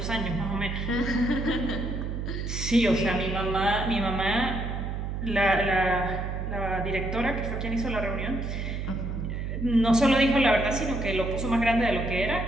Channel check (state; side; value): noise; right; hum, 4 dB below the sound